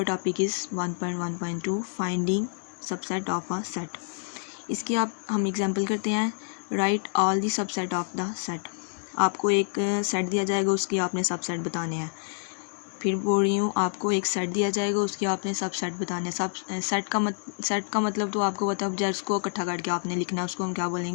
topic is 1.1.2 finding subset of a set. इसकी हम एग्जांपल करते हैं. Right all the subset of the set. आपको एक सेट दिया जाएगा, उसकी आपने सबसेट बताने हैं. फिर बोल रही हूँ, आपको एक सेट दिया जाएगा, उसकी आपने सबसेट बताने हैं. सेट का मतलब तो आपको पता है, ऑब्जेक्ट्स को इकट्ठा करके आपने लिखना है, उसको हम क्या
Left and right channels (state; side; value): silent; right; digital silence